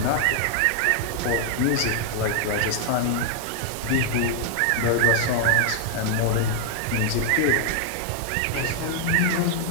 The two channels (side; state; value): both; different; correlation 0.00